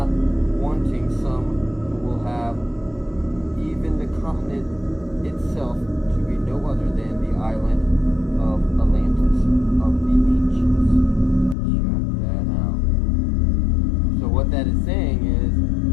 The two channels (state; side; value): drops out; right; at 11.6 s